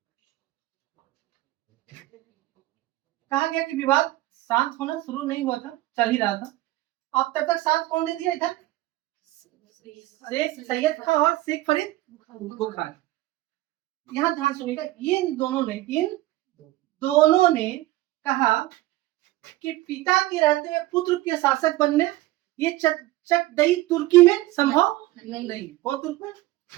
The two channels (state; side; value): quieter; left; 17.2 dB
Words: कहा गया कि विवाद शांत होना शुरू नहीं हुआ था, चल ही रहा था। अब तब तक साथ कौन दे दिया इधर? शेख सैयद खान और शेख फरीद बुखार। यहाँ ध्यान सुनिएगा, इन दोनों ने कहा कि पिता के रहते हुए पुत्र के शासक बनने ये चकदई तुर्की में संभव नहीं। कौन तुर्क में?